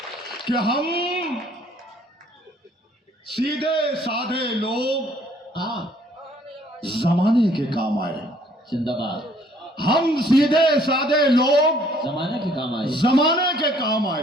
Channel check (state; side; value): normal; both; correlation 0.61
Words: कि हम सीधे साधे लोग जमाने के काम आए। जिंदाबाद। हम सीधे साधे लोग जमाने के काम आए। जमाने के काम